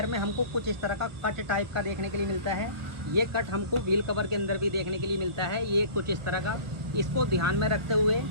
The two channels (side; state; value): left; late; 1.2 ms